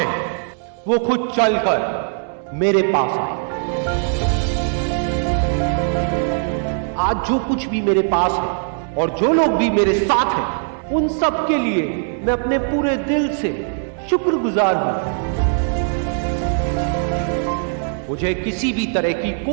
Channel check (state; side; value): silent; left; digital silence